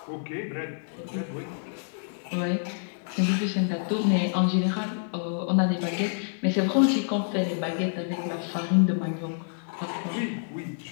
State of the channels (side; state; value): right; silent; 59 dB below the other